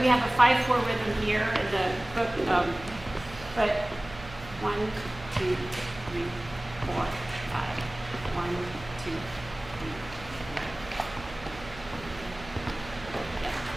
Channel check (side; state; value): right; noise; hum, 16 dB below the sound